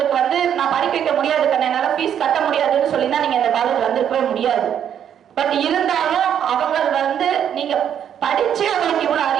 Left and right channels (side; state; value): left; quieter; 9.2 dB